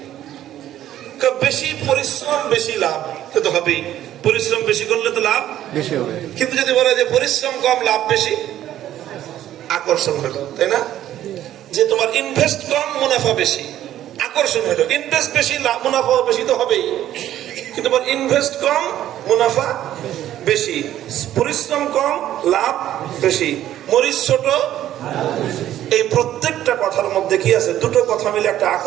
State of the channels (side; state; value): left; quieter; 12.3 dB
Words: বেশি পরিশ্রম বেশি লাভ, তো হবেই, পরিশ্রম বেশি করলে তো লাভ বেশি হবে। কিন্তু যদি বলা যে পরিশ্রম কম লাভ বেশি, আকর্ষণ হলো, তাই না? যে তোমার ইনভেস্ট কম মুনাফা বেশি, আকর্ষণ হলো। ইনভেস্ট বেশি লাভ মুনাফা বেশি তো হবেই, কিন্তু তোমার ইনভেস্ট কম মুনাফা বেশি, পরিশ্রম কম লাভ বেশি, মরিচ ছোট। এই প্রত্যেকটা কথার মধ্যে কি আছে, দুটো কথা মিলে একটা